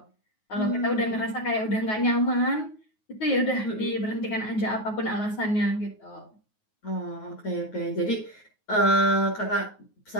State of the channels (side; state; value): right; late; 9.4 ms